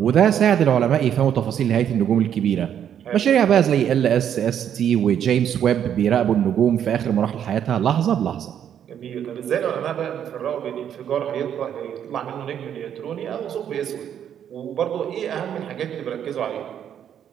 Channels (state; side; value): quieter; left; 9.3 dB